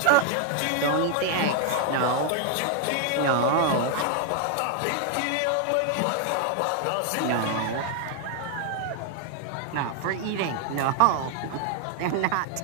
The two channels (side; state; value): both; different; correlation 0.00